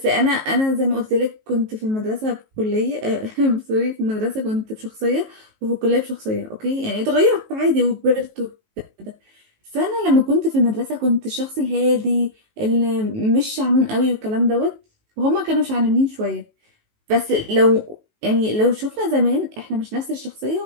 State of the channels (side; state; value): left; late; 19 ms